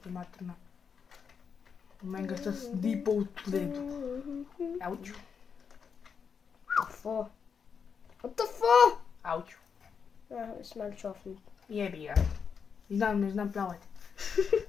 materna. Meni ga sta zdi po utledu. Auč. Tafo. What the fuck? Auč. Smel čofnit. Jebi ga. Ne znam plavati.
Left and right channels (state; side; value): quieter; right; 6.4 dB